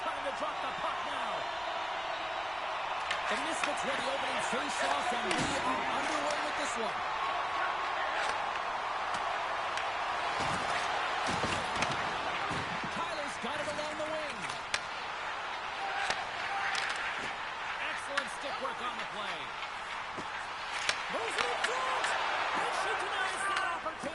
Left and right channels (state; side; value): noise; left; rumble, 22 dB below the sound